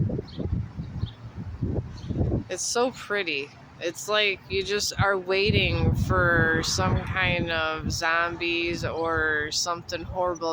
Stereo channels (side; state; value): both; identical; correlation 1.00